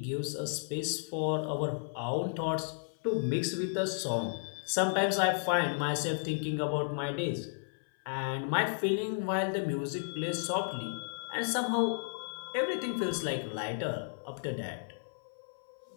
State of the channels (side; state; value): right; silent; 55 dB below the other